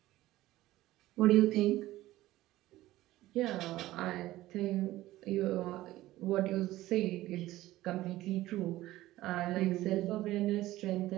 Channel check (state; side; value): quieter; left; 16.2 dB